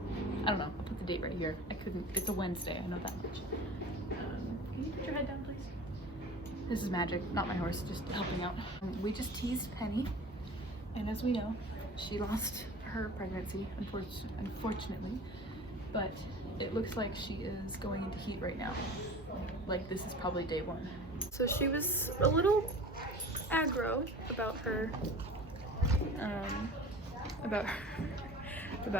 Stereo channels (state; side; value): normal; both; correlation 0.39